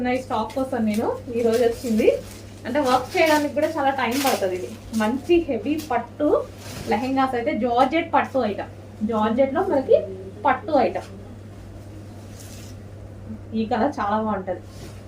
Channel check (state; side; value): identical; both; correlation 1.00